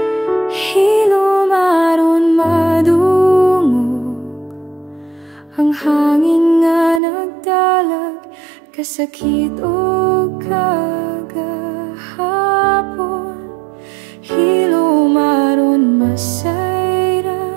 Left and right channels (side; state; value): left; drops out; at 7.0 s